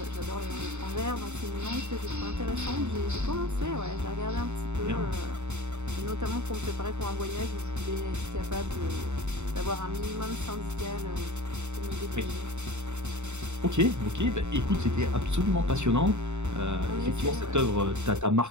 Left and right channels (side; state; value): left; late; 0.83 ms